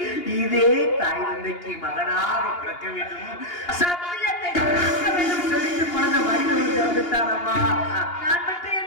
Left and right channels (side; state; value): right; late; 2.8 ms